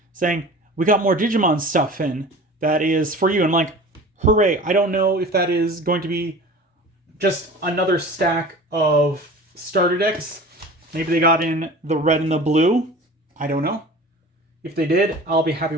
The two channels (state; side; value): normal; both; correlation 0.39